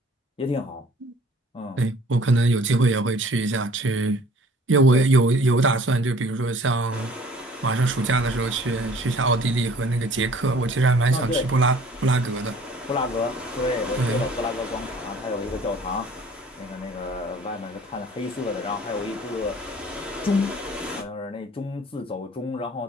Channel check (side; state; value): both; normal; correlation 0.52